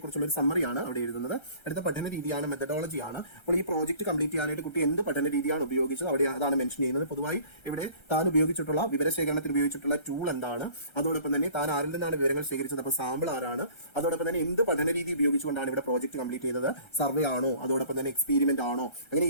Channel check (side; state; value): right; late; 1.3 ms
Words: ഒരു സമ്മറിയാണ് അവിടെ എഴുതുന്നത്. അടുത്ത പഠന രീതിയാണ്, മെത്തഡോളജിയാണ്. അപ്പോൾ ഈ പ്രോജക്റ്റ് കംപ്ലീറ്റ് ചെയ്യാനായിട്ട് കുട്ടി എന്ത് പഠന രീതിയാണ് ഉപയോഗിച്ചത് അവിടെ അതാണ് മെൻഷൻ ചെയ്യുന്നത്. പൊതുവായി ഇവിടെ താൻ ഉപയോഗിച്ചിട്ടുള്ള വിവരശേഖരണത്തിൽ ഉപയോഗിച്ചിട്ടുള്ള ടൂൾ എന്താണ്, അതോടൊപ്പം തന്നെ താൻ ആരിൽ നിന്നാണ് വിവരങ്ങൾ ശേഖരിച്ചത്, അപ്പോൾ സാമ്പിൾ ആരാണ്, അതോടൊപ്പം തന്നെ എന്ത് പഠന രീതി ഉപയോഗിച്ചുകൊണ്ടാണ് ഇവിടെ പ്രോജക്റ്റ് കംപ്ലീറ്റ് ചെയ്തത്, സർവേ ആണോ, അതോടൊപ്പം തന്നെ എക്സ്പീരിമെന്റ് ആണോ, അങ്ങനെ